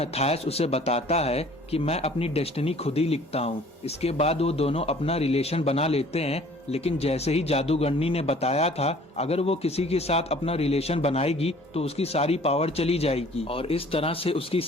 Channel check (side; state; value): both; normal; correlation 0.52